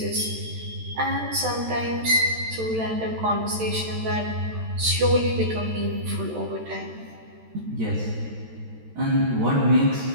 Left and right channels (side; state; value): left; late; 13 ms